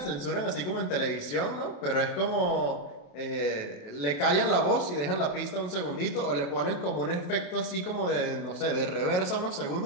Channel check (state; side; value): late; right; 28 ms